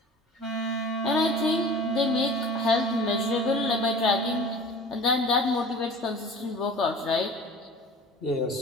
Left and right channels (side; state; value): both; normal; correlation 0.42